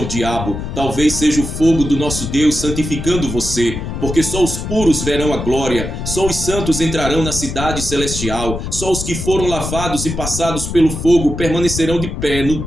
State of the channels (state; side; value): noise; left; rumble, 5 dB below the sound